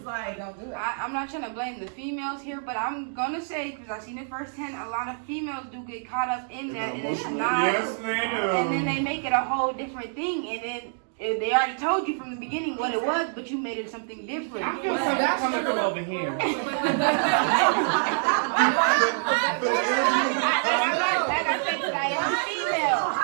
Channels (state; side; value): silent; left; digital silence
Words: like. Don't do it. I'm not trying to blame the females here, but I'm gonna say, because I've seen it firsthand, a lot of females do get caught up in that, and it's not. Yes, they do. And then they make it a whole different thing, and then they already told you from the beginning what it was, but you made it something different. I feel something coming from over here. Like I said, 'cause I am female.